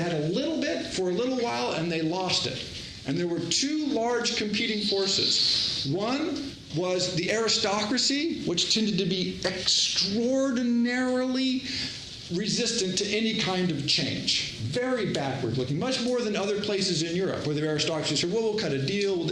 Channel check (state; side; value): identical; both; correlation 1.00